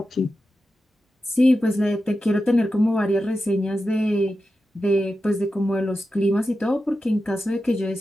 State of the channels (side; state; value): both; normal; correlation 0.91